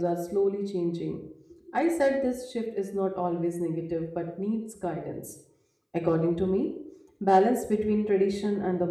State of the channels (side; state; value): both; identical; correlation 1.00